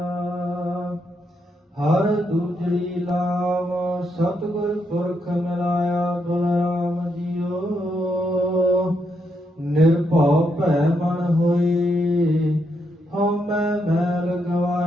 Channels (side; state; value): both; normal; correlation 0.79